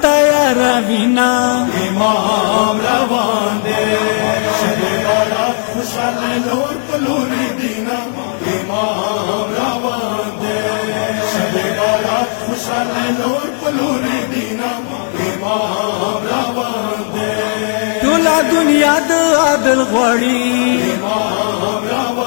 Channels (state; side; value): silent; right; digital silence